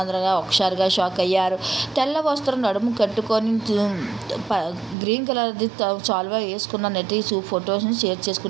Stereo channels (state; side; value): drops out; left; at 5.0 s